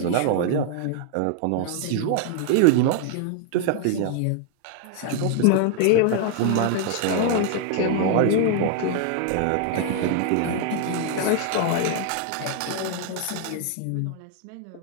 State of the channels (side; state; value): both; different; correlation 0.00